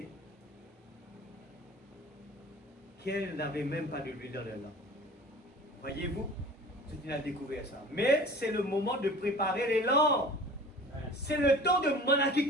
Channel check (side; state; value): both; normal; correlation 0.42